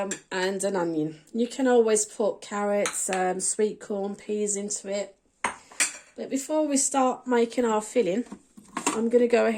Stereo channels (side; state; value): both; identical; correlation 1.00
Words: an onion. You can always put carrots, sweet corn, peas into it. But before we start making our filling, I'm going to go